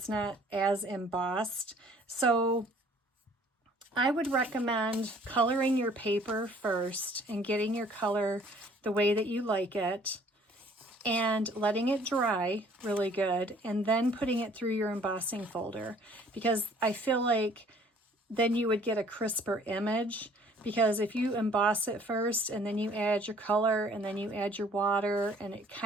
not as embossed. So I would recommend coloring your paper first and getting your color the way that you like it and letting it dry really good and then putting it through your embossing folder, because I feel like then you would get a crisper image. Because if you emboss it first and then you add your color and then you add your water and it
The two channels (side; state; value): both; normal; correlation 0.56